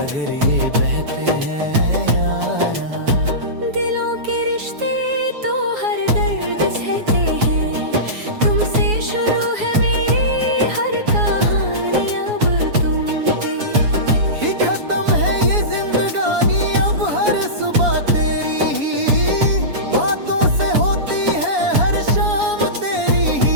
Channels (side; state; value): left; late; 7.1 ms